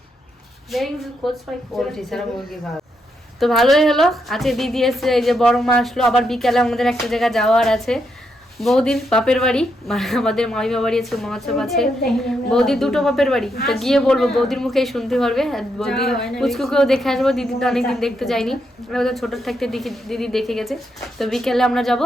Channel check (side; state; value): both; normal; correlation 0.80